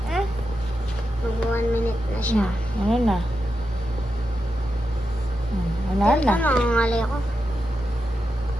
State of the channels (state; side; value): normal; both; correlation 0.88